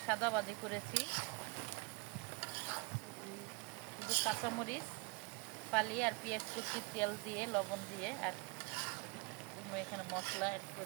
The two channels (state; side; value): quieter; left; 28.3 dB